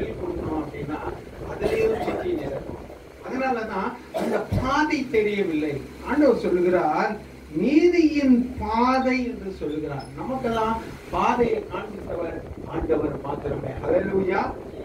கொடுக்கணும் அப்படின்னா அதுலயும் சிக்கி நிற்கும். அதனாலதான் அந்த பாதை தெரியவில்லை. ஆண்டவர் சொல்லுகிறார் நீதியின் பாதை என்று சொல்லுகிறார். நமக்கெல்லாம் பாதையை காண்பித்தவர் ஆண்டவர் மாத்திரமே. ஹல்லேலூயா.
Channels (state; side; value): identical; both; correlation 1.00